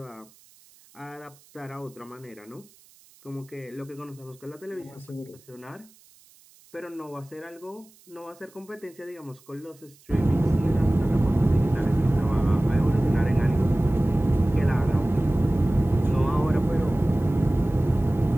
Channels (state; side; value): noise; right; hiss, 28 dB below the sound